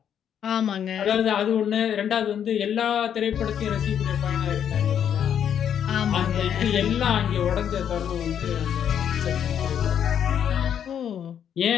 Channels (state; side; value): quieter; right; 9.0 dB